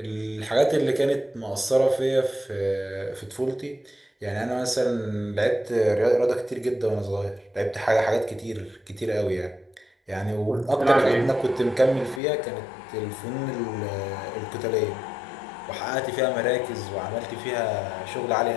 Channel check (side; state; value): right; drops out; at 12.2 s